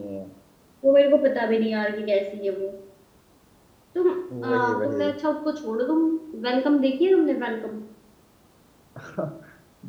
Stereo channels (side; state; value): both; identical; correlation 1.00